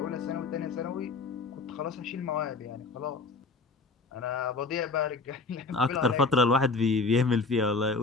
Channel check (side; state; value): right; quieter; 3.9 dB